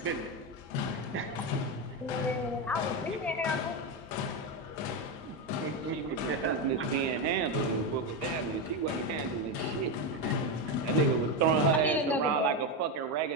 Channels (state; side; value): normal; both; correlation 0.11